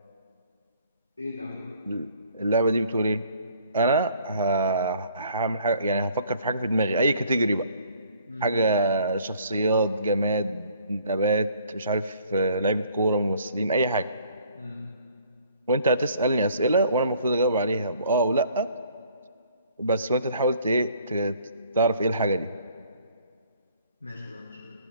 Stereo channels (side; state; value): both; inverted; correlation -0.59